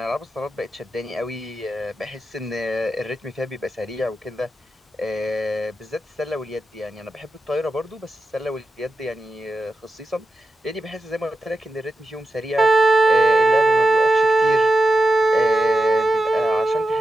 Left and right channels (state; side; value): normal; both; correlation 0.89